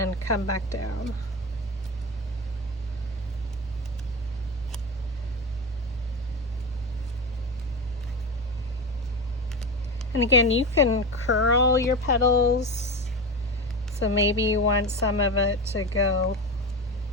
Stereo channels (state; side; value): normal; both; correlation 0.22